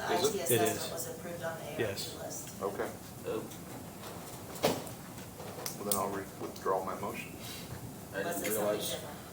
Is IT it? It assessment is. was approved on the ARP Yes. list. Okay, Oh, well then I'll withdraw my motion. I Unless didn't it's something realize,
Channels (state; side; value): identical; both; correlation 1.00